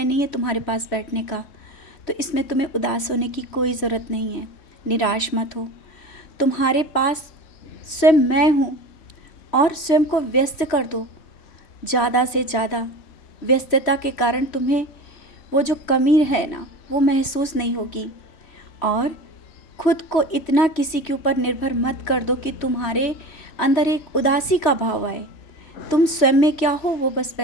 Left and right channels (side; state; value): right; late; 3.1 ms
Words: नहीं है तुम्हारे पास बैठने का। तो इसमें तुम्हें उदास होने की कोई ज़रूरत नहीं है। निराश मत हो। तुम्हारे पास स्वयं मैं हूँ और स्वयं को व्यस्त कर दो ज़्यादा से ज़्यादा। व्यस्तता के कारण तुम्हें वो जो कमी है ना, वो महसूस नहीं होगी। और खुद को इतना किसी के ऊपर निर्भर मत कर दो कि तुम्हारे अंदर एक उदासी का भाव आए। तुम स्वयं में क्या हो वो बस